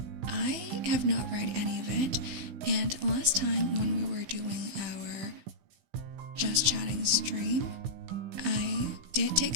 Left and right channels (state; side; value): late; left; 16 ms